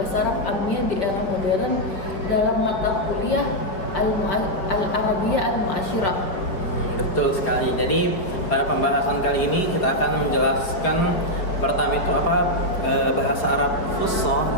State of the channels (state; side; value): late; right; 4.8 ms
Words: Arab Amiyah di era modern dalam mata kuliah Al-Arabiyah Al-Mu'asyirah. Betul sekali. Jadi pada pembahasan kali ini kita akan menjelaskan pertama itu apa bahasa Arab Fusha